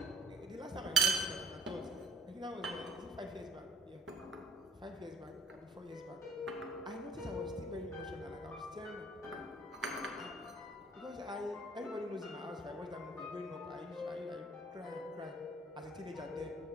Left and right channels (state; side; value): normal; both; correlation 0.56